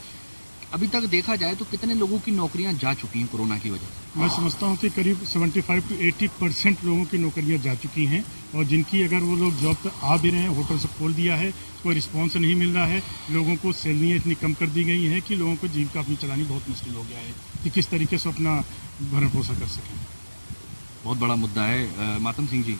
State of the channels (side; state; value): both; inverted; correlation -1.00